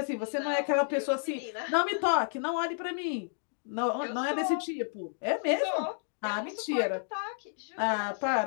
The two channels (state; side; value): silent; right; digital silence